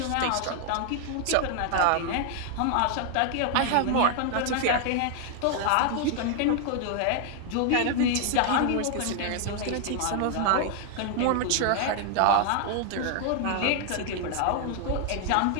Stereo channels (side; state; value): both; different; correlation 0.00